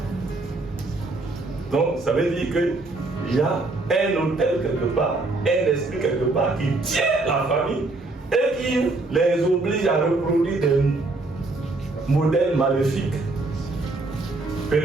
Donc, ça veut dire qu'il y a un hôtel quelque part, un esprit quelque part qui tient la famille et qui les oblige à reproduire des modèles maléfiques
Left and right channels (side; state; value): left; quieter; 3.1 dB